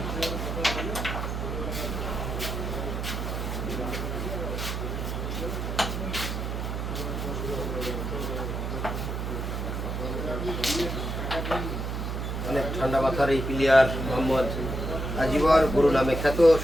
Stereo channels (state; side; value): noise; right; hum, 3 dB below the sound